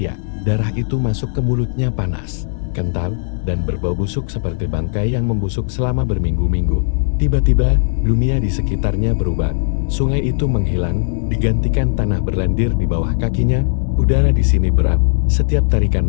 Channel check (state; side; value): silent; right; 63 dB below the other